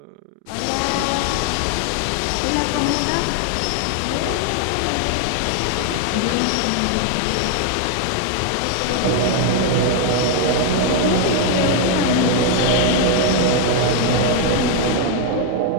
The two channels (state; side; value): different; both; correlation 0.00